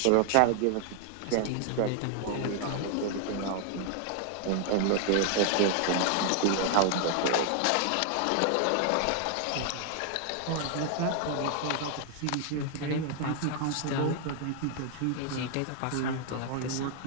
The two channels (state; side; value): different; both; correlation 0.00